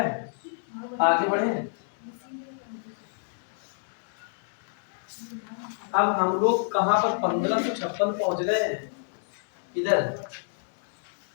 आगे बढ़े। अब हम लोग कहां पर 1556 पहुंच गए हैं? इधर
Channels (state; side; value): silent; right; digital silence